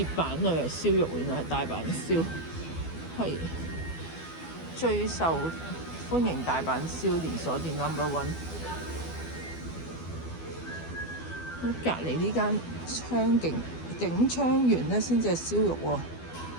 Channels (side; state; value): right; late; 12 ms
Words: 板度有燒肉，原來係大阪燒，係最受歡迎大阪燒連鎖店 No.1。咁隔離呢間景昌園咧，先至係燒肉喎。